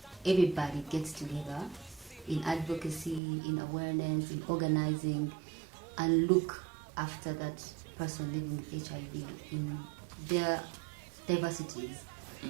everybody gets together in advocacy, in awareness, in organizing, and look after that person living with HIV in their diversities.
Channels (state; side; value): drops out; left; at 3.2 s